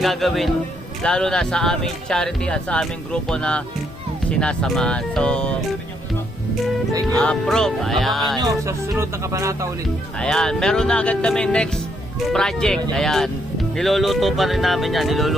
gagawin, lalo na sa aming charity at sa aming grupo na sinasamahan. So, Thank you. approve. Abangan nyo Ayan. sa susunod na kabanata ulit. Ayan. Meron na agad kami next project. Ayan. Niluluto pa rin namin yan.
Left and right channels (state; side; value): normal; both; correlation 0.74